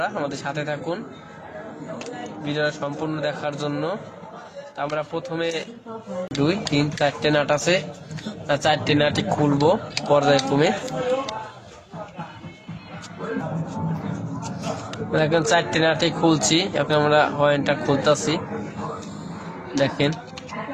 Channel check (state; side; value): identical; both; correlation 1.00